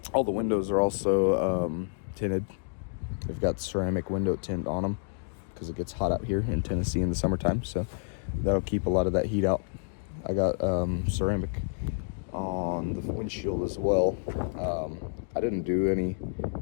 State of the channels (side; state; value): right; silent; digital silence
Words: All the windows are also tinted. They've got ceramic window tint on them because it gets hot out here in Tennessee in the summertime, so that'll keep a lot of that heat out. I got ceramic on the windshield as well. I didn't do any